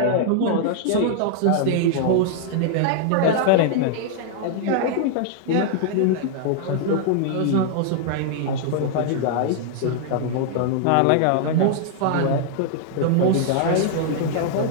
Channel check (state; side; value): different; both; correlation -0.01